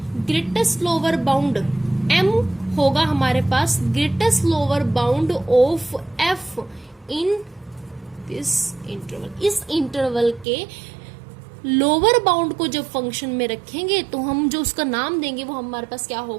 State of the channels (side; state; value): left; drops out; at 10.5 s